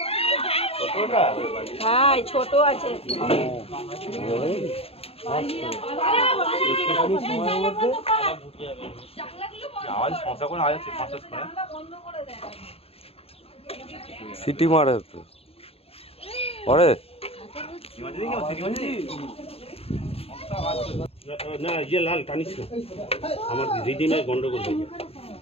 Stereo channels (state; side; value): late; right; 0.28 ms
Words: হ্যাঁ ছোট আছে। সিটি মারে তো পরে না ইয়ে লাল টানিস না, আমার রিডিমে গন্ডগোল হয়ে যাবে।